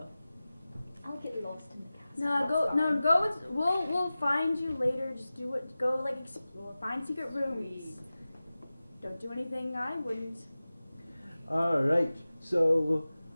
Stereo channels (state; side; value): inverted; both; correlation -0.96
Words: I'll get lost in the castle. No, That's go. fine. No, go. With, we'll find you later. Just do it. Go like explore. Find secret rooms. Sweet. Don't do anything I wouldn't. Alright, so